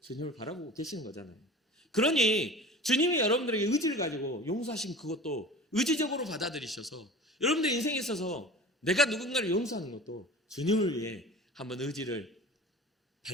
주님을 바라보고 계시는 거잖아요. 그러니 주님이 여러분들에게 의지를 가지고 용서하신 그것도 의지적으로 받아들이셔서 여러분들의 인생에 있어서 내가 누군가를 용서하는 것도 주님을 위해 한번 의지를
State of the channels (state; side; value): normal; both; correlation 0.38